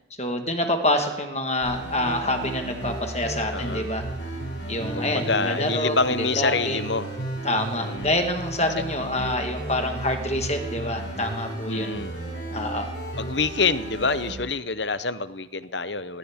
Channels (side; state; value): both; normal; correlation 0.06